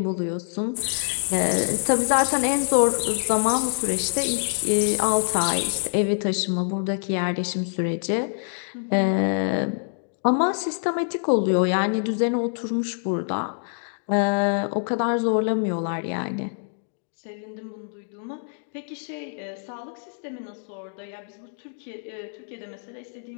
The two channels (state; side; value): silent; right; digital silence